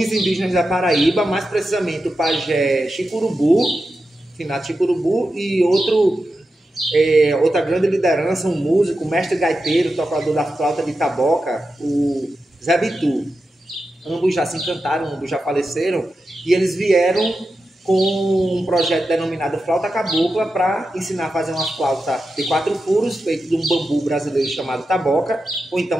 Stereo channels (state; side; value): normal; both; correlation 0.90